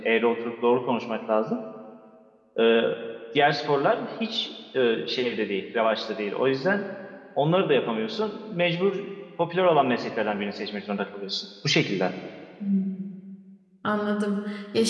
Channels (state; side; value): identical; both; correlation 1.00